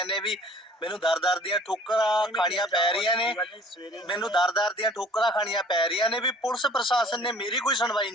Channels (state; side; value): normal; both; correlation 0.51